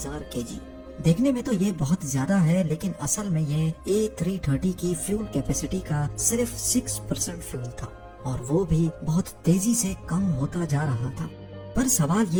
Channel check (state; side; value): identical; both; correlation 1.00